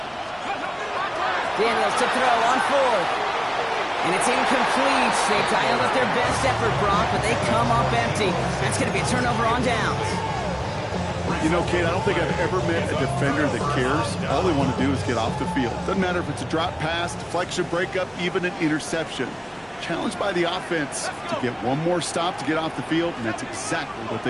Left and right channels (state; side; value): identical; both; correlation 1.00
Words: Daniels to throw on 4th. And it's incomplete. They dialed up their best effort, Brock, but they come up empty. That's going to be a turnover on downs. You know, Kate, I don't think I've ever met a defender that cares. All they want to do is get off the field. Doesn't matter if it's a drop pass, deflection, breakup, even an interception. Challenged by the offense to get one more stop to get off the field, and that's exactly what